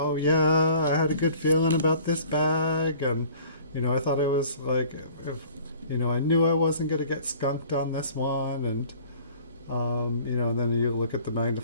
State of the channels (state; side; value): inverted; both; correlation -0.50